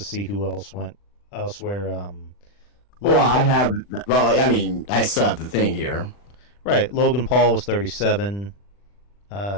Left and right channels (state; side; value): late; right; 40 ms